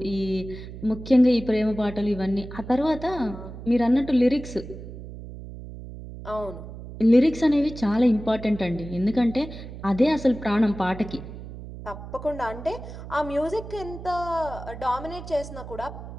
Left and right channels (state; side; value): noise; right; hum, 12 dB below the sound